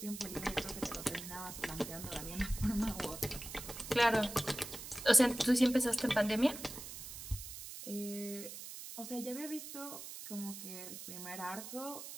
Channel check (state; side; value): noise; right; hiss, 10 dB below the sound